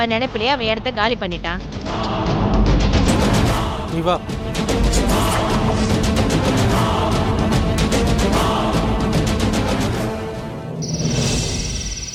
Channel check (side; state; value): both; identical; correlation 1.00